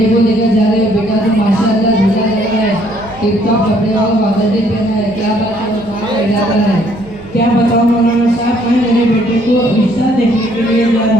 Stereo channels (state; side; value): noise; right; hum, 20 dB below the sound